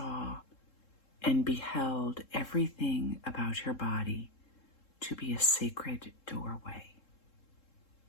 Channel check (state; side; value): late; right; 3.7 ms